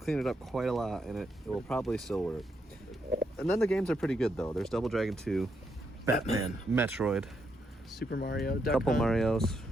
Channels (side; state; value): both; normal; correlation 0.79